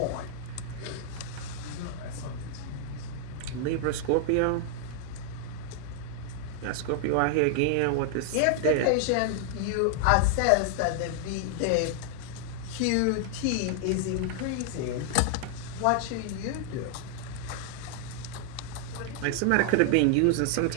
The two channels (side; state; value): both; different; correlation 0.00